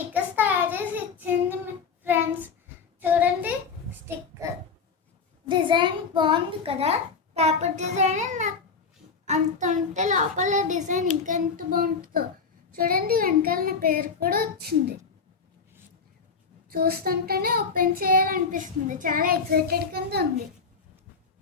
తయారు చేసి ఇచ్చింది ఫ్రెండ్స్. చూడండి స్టిక్కర్ డిజైన్ బాగుంది కదా, పేపర్ డిజైన్. నాకు అంత ఉంటే లోపల డిజైన్ ఇంకా ఎంత బాగుంటుందో. చూడండి వెనకాల నా పేరు కూడా వచ్చింది. చూస్తుంటేనే ఓపెన్ చేయాలనిపిస్తుంది, చాలా ఎక్సైటెడ్ కింద ఉంది.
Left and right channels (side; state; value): right; quieter; 5.3 dB